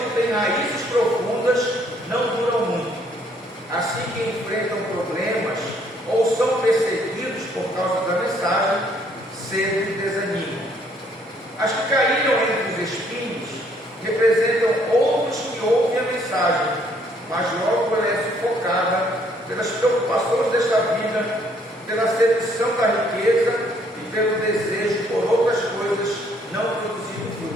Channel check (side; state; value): both; normal; correlation 0.65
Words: têm raízes profundas, não duram muito. Assim que enfrentam problemas ou são perseguidos por causa da mensagem, cedo desanimam. As que caíram entre os espinhos representam outros que ouvem a mensagem, mas logo ela é sufocada pelas preocupações desta vida, pela sedução da riqueza e pelo desejo por outras coisas, não produzindo